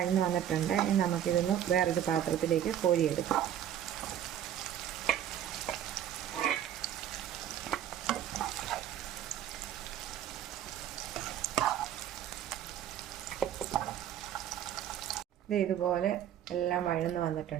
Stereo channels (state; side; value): quieter; left; 10.6 dB